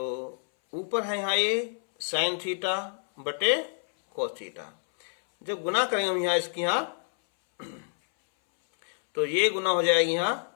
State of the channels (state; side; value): silent; right; 59 dB below the other